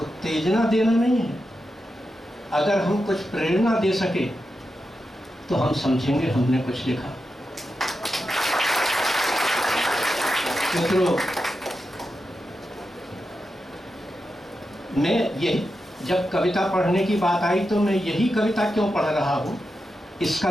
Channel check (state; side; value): normal; both; correlation 0.89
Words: देना नहीं है। अगर हम कुछ प्रेरणा दे सके तो हम समझेंगे हमने कुछ लिखा। मित्रों, मैं यही जब कविता पढ़ने की बात आई तो मैं यही कविता क्यों पढ़ रहा हूँ इसका